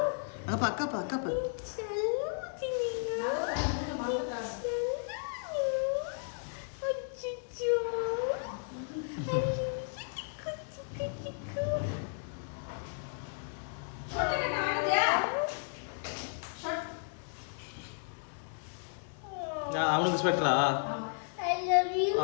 அங்கப்பா அக்காப்பா அக்காப்பா அவனுக்கு ஸ்வெட்டரா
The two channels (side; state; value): right; silent; 55 dB below the other